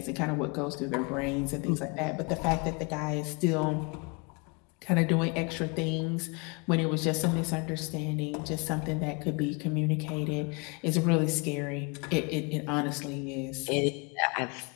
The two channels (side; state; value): right; quieter; 31.2 dB